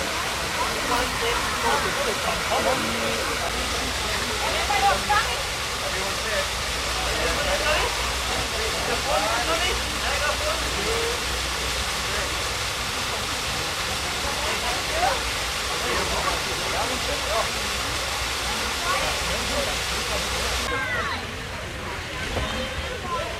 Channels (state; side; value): identical; both; correlation 1.00